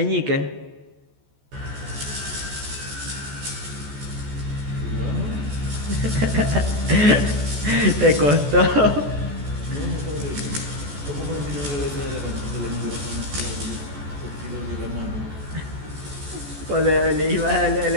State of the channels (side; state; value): left; late; 14 ms